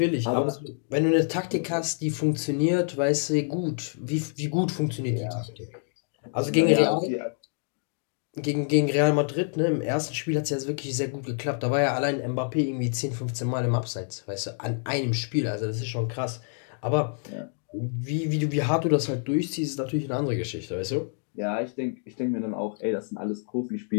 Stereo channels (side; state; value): right; silent; 60 dB below the other